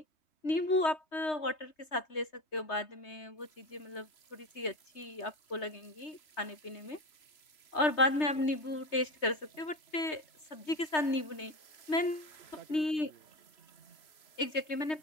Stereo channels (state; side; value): late; right; 3.0 ms